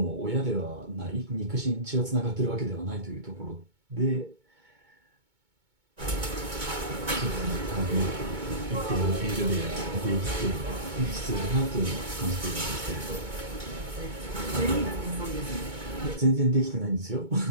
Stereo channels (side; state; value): left; late; 2.2 ms